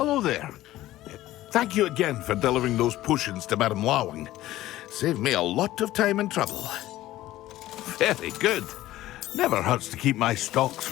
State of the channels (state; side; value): quieter; right; 15.3 dB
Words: there. Thank you again for delivering those potions to Madame Lawing. Saved me a lot of time and trouble. Very good. Never hurts to keep my stocks